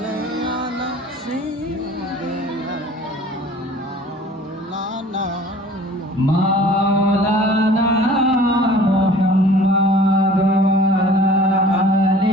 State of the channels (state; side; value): normal; both; correlation 0.48